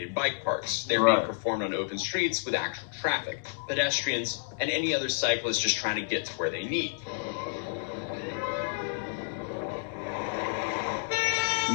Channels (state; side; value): silent; right; digital silence